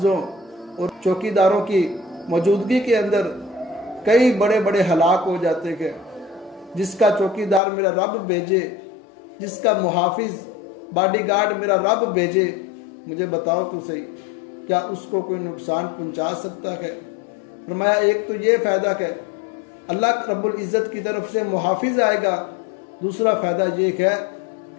और चौकीदारों की मौजूदगी के अंदर कई बड़े बड़े हलाक हो जाते हैं। जिसका चौकीदार मेरा रब भेजे, जिसका मुहाफिज बॉडीगार्ड मेरा रब भेजे, मुझे बताओ तो सही क्या उसको कोई नुकसान पहुंचा सकता है? फरमाया एक तो ये फायदा है अल्लाह रब्बुल इज्जत की तरफ से मुहाफिज आएगा, दूसरा फायदा ये है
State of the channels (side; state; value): right; drops out; at 7.6 s